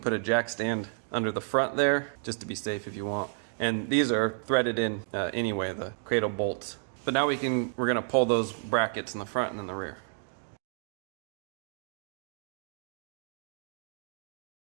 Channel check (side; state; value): left; silent; 57 dB below the other